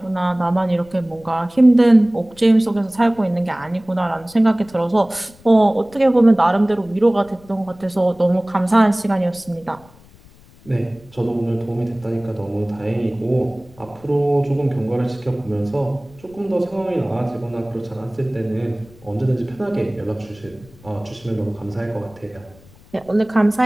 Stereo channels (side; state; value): left; noise; rumble, 25 dB below the sound